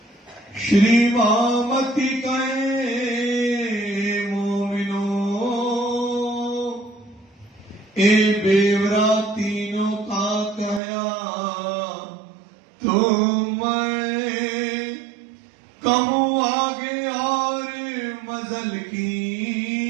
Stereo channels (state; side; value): drops out; left; at 10.8 s